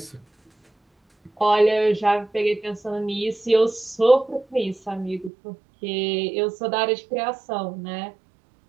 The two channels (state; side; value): drops out; left; at 5.3 s